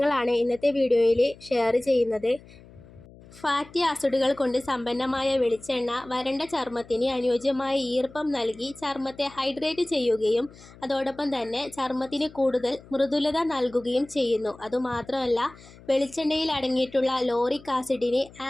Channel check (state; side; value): noise; left; hum, 22 dB below the sound